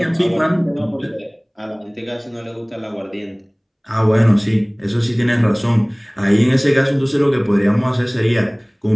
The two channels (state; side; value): identical; both; correlation 1.00